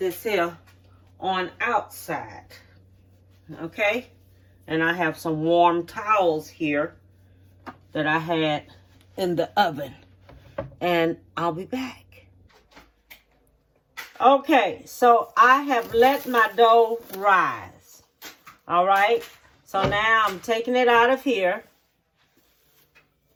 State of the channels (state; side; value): identical; both; correlation 1.00